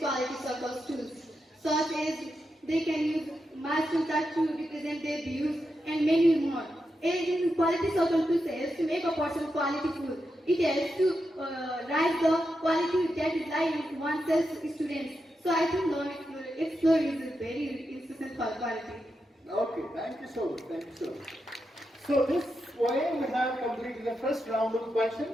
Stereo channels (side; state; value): both; normal; correlation 0.87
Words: circles tools, such as they can use milestone chart to represent their views and many more. In quality circle tools helps to make a person quality full. It helps to rise the quality that is lying in oneself students. So I think learn, explore is a very insistent for quality. Okay, thank you so much. Thank you so much. So this way we have completed the first round of